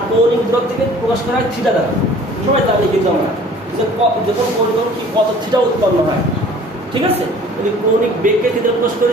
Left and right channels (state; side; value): normal; both; correlation 0.50